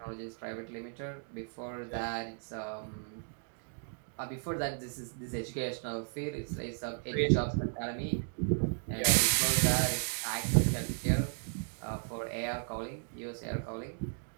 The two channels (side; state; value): left; silent; 55 dB below the other